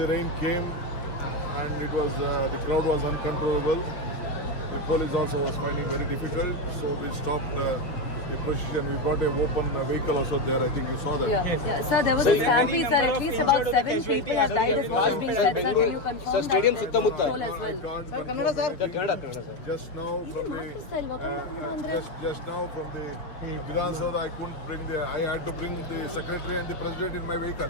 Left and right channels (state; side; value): late; right; 6.4 ms